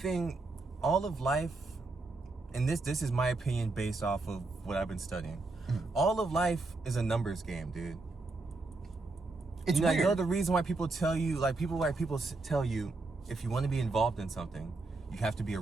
all of life, and this is my opinion based off of what I've been studying. All of life is a numbers game, dude. It's weird. You know the reason why people tell you, tell you, if you want to be involved in something, you have to be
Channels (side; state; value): left; quieter; 3.4 dB